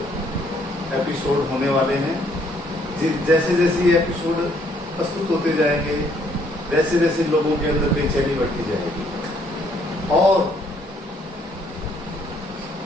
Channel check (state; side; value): normal; both; correlation 0.67